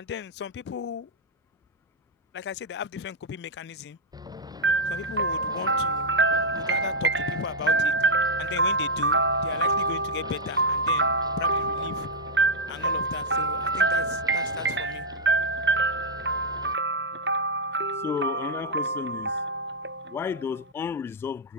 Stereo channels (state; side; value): normal; both; correlation 0.00